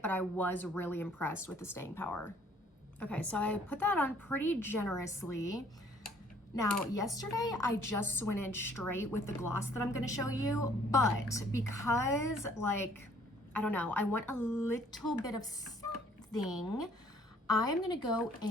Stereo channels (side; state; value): both; normal; correlation 0.60